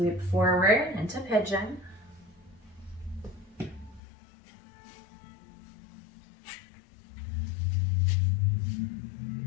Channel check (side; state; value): right; drops out; at 4.0 s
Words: forward into pigeon.